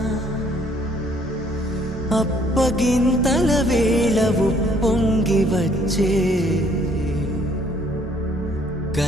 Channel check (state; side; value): normal; both; correlation 0.62